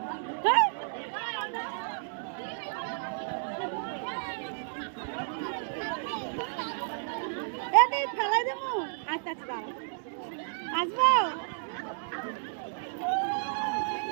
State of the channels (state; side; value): silent; left; digital silence